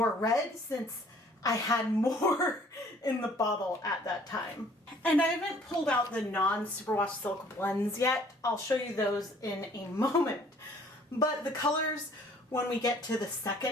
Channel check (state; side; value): normal; both; correlation 0.57